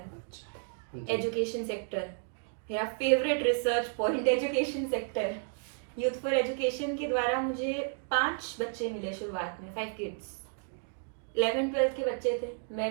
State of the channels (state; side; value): silent; left; 56 dB below the other